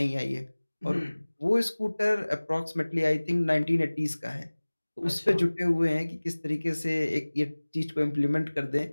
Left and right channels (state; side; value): inverted; both; correlation -1.00